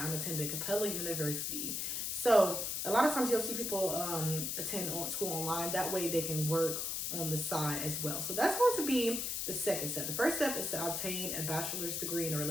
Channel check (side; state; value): left; noise; hiss, 1 dB below the sound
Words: attending Capella University. So a lot of times you'll see people attend school online. That way they can work on the side as well. So that's going to be the second step. The first step is to obtain a bachelor's degree in a